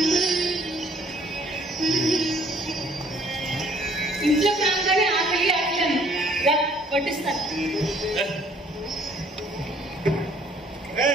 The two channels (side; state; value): both; normal; correlation 0.60